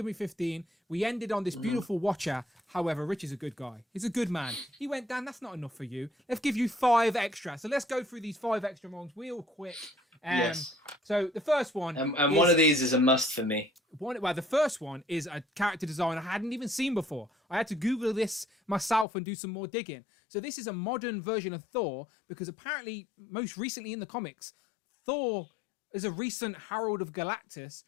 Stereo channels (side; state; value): right; drops out; at 19.1 s